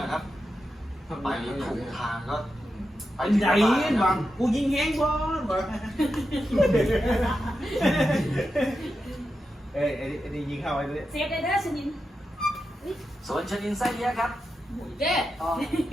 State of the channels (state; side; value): normal; both; correlation 0.88